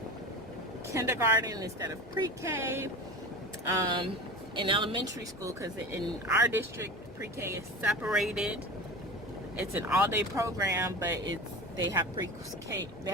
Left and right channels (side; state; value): both; normal; correlation 0.31